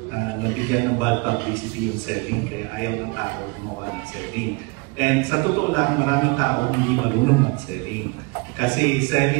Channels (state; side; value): quieter; left; 28.8 dB